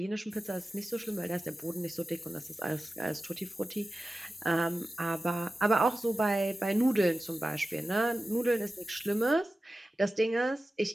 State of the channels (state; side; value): normal; both; correlation 0.94